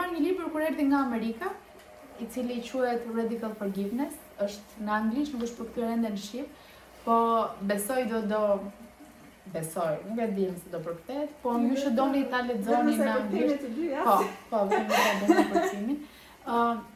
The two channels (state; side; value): identical; both; correlation 1.00